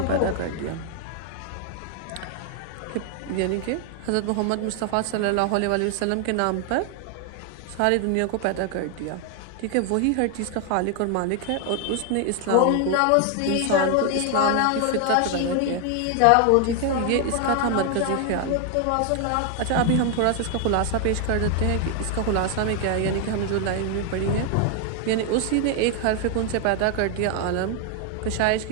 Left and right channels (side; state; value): both; different; correlation 0.00